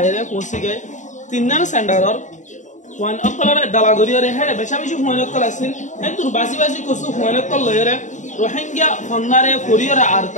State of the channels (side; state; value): right; late; 0.36 ms